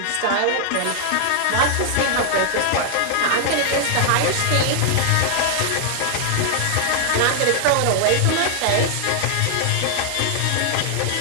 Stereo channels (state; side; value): different; both; correlation 0.00